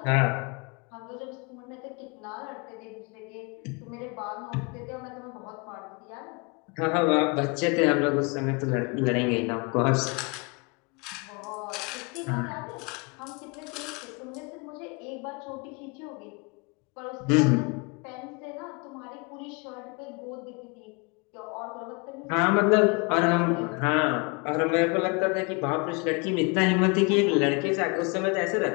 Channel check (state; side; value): quieter; right; 30.9 dB